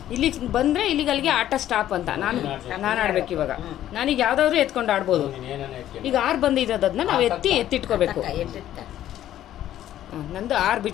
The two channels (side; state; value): right; quieter; 12.3 dB